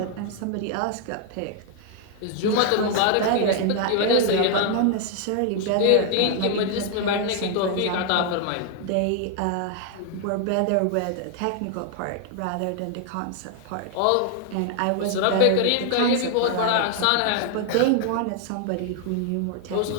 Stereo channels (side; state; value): both; different; correlation 0.00